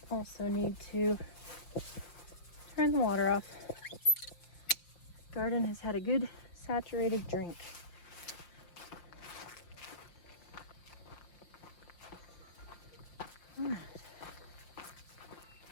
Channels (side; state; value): right; late; 5.7 ms